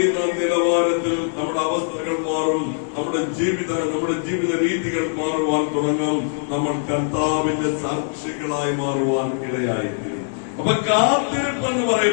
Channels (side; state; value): right; silent; 60 dB below the other